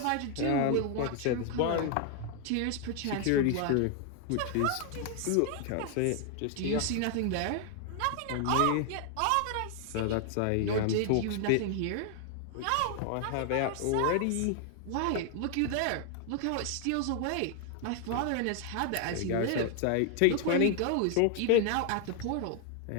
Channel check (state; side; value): different; both; correlation 0.00